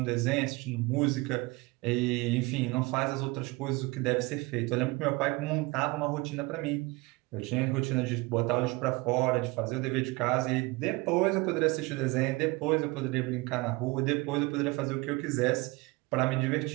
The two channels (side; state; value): left; quieter; 23.7 dB